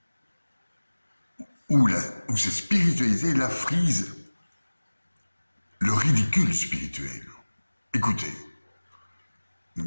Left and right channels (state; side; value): inverted; both; correlation -1.00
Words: Où cette spiritualité la frise le ridicule spirituel. Écoutez,